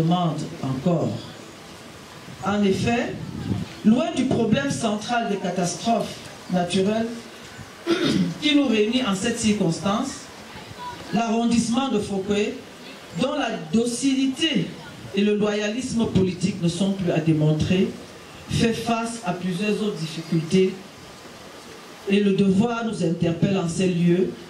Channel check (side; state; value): both; identical; correlation 1.00